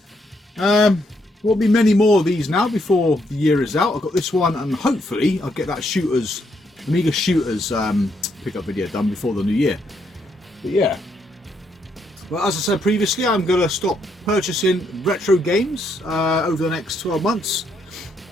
There'll be many more of these now before the year is out. I've got this one and hopefully I'll get that Amiga Shooters pickup video done before the new year. But yeah. Well, as I said previously, I'm going to stop purchasing retro games over the next 12 months.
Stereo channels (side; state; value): both; normal; correlation 0.75